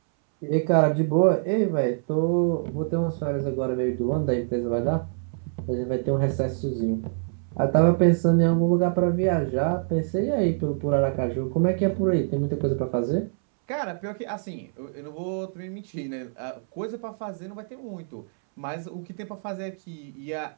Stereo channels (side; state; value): left; silent; 61 dB below the other